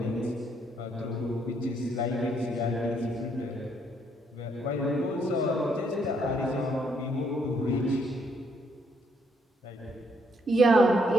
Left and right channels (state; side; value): normal; both; correlation 0.71